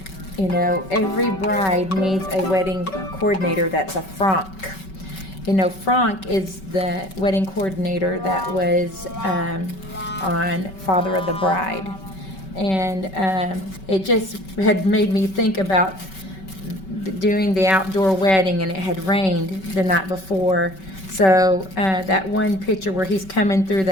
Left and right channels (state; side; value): late; right; 5.3 ms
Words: you know, every bride needs a wedding coordinator that's a Franck. You know, Franck is the wedding coordinator that was on Father of the Bride. And it just had made me think about doing the outdoor wedding, and it had rained the night before. So that one picture where he's coming through